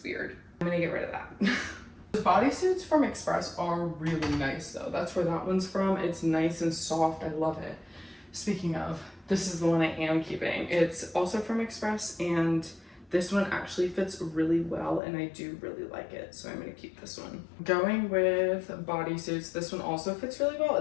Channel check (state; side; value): drops out; right; at 15.0 s